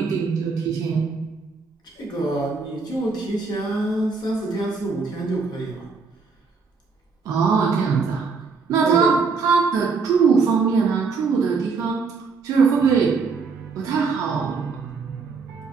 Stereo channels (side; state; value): left; quieter; 4.8 dB